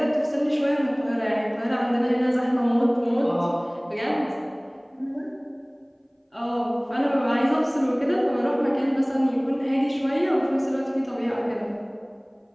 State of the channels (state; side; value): identical; both; correlation 1.00